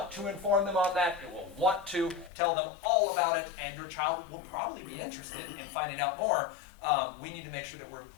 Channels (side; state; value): right; drops out; at 2.3 s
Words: to inform them on that. It will want to tell them all about it, and your child will probably be interested in finding out more. We need to make sure that we're